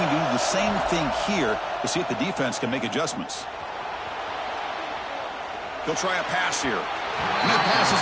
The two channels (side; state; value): both; identical; correlation 1.00